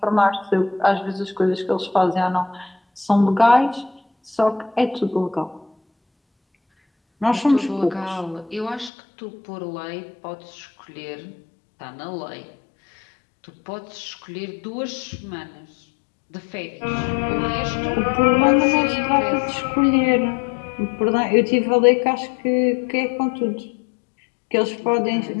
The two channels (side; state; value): right; drops out; at 8.9 s